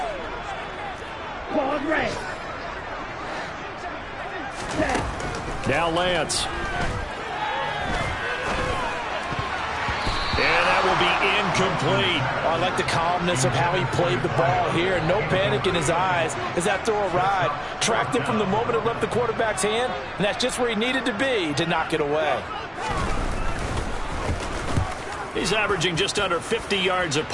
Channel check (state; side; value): identical; both; correlation 1.00